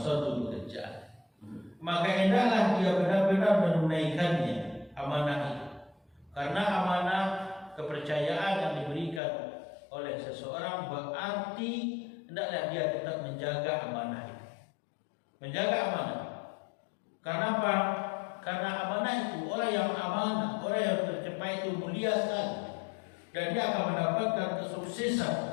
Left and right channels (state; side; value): drops out; right; at 9.2 s